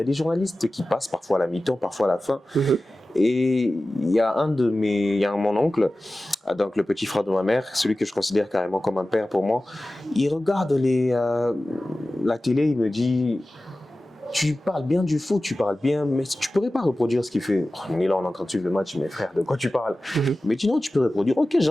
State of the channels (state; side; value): normal; both; correlation 0.96